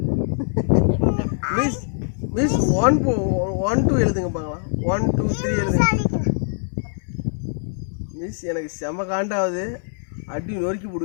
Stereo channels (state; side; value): silent; right; digital silence